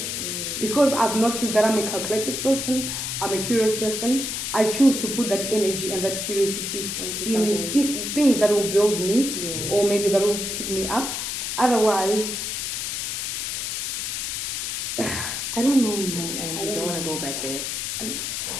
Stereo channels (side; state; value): left; noise; hiss, 3 dB below the sound